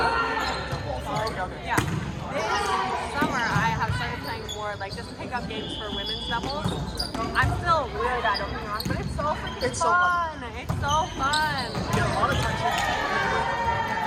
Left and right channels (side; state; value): both; identical; correlation 1.00